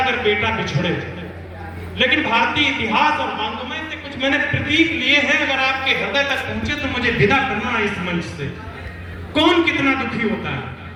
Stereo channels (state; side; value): identical; both; correlation 1.00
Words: अगर बेटा बिछड़े, लेकिन भारतीय इतिहास और वांग्मय से कुछ मैंने प्रतीक लिए हैं। अगर आपके हृदय तक पहुंचे तो मुझे विदा करना है इस मंच से। कौन कितना दुखी होता है।